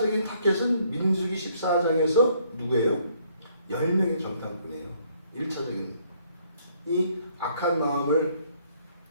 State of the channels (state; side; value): inverted; both; correlation -0.66